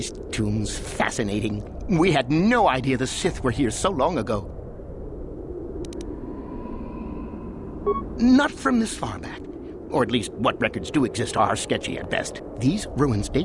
tombs fascinating? We had no idea the Sith were here so long ago. Not from this far back. Or at least what records do exist are sketchy at best. These ruins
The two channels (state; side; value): identical; both; correlation 1.00